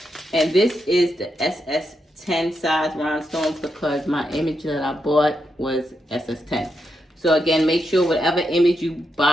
And this is the SS10 size rhinestones because my image that I bought was SS10. So again, make sure whatever image you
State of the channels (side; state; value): both; normal; correlation 0.84